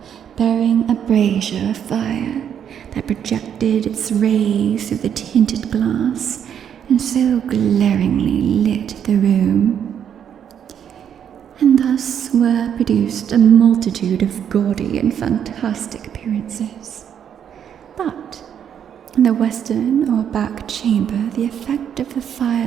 bearing a brazier of fire that projected its rays through the tinted glass and so glaringly lit the room. And thus were produced a multitude of gaudy and fantastic appearances. But in the western or back chamber, the effect of the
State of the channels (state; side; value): quieter; left; 8.8 dB